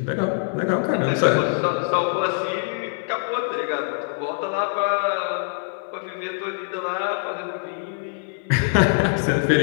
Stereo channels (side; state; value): right; silent; 58 dB below the other